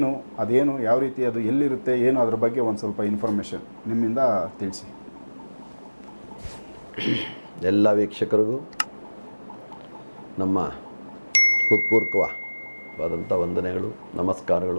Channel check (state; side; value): inverted; both; correlation -1.00